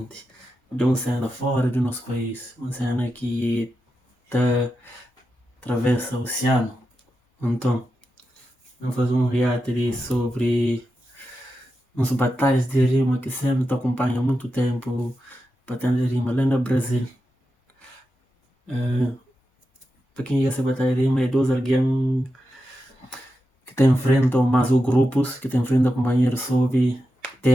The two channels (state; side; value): normal; both; correlation 0.89